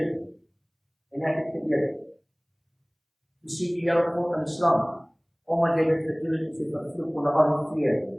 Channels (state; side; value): identical; both; correlation 1.00